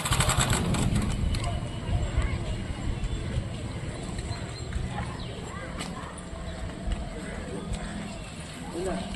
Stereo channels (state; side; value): identical; both; correlation 1.00